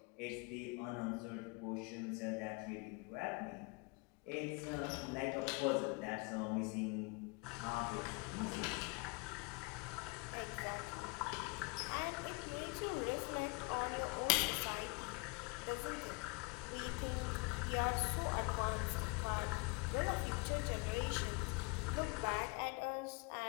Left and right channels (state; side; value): quieter; right; 29.5 dB